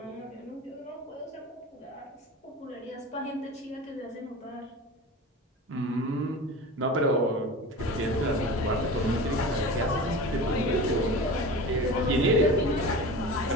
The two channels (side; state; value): both; normal; correlation 0.33